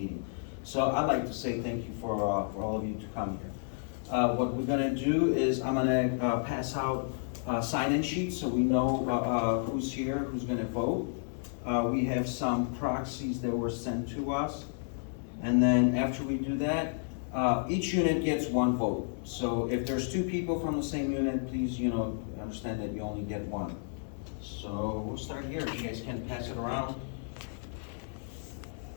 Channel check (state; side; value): silent; right; 57 dB below the other